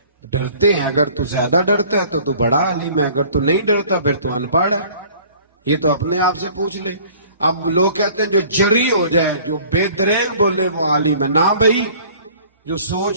ڈرتے ہیں۔ اگر تو زیادہ ڈرتا ہے تو بڑا عالم ہے، اگر تو نہیں ڈرتا پھر تو ان پڑھ ہے۔ یہ تو اپنے آپ سے پوچھ لے۔ اب لوگ کہتے ہیں جو جری ہو جائے، جو بے دریغ بولے وہ عالم ہے۔ نہ بھائی، جو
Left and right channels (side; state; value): both; inverted; correlation -0.51